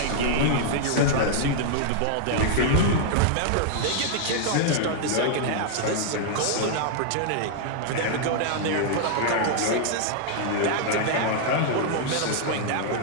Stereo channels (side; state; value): both; different; correlation -0.01